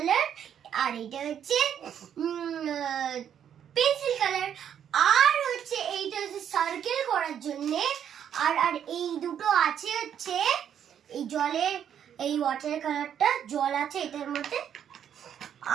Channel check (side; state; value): left; quieter; 9.1 dB